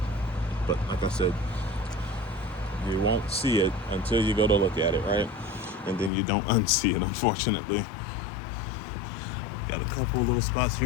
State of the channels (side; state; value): right; drops out; at 6.1 s